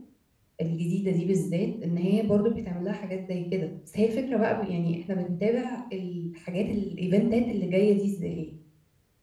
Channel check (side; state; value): both; identical; correlation 1.00